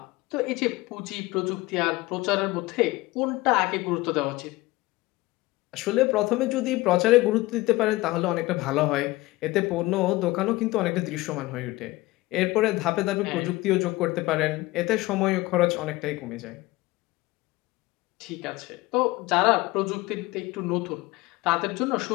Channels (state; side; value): quieter; right; 20.1 dB